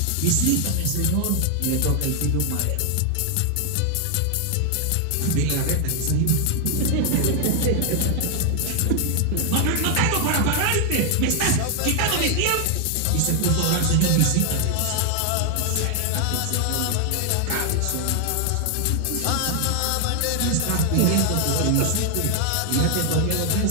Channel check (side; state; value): both; different; correlation 0.00